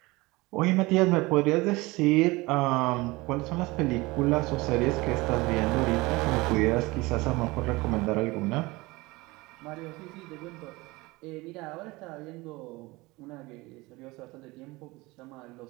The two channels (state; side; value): quieter; left; 22.2 dB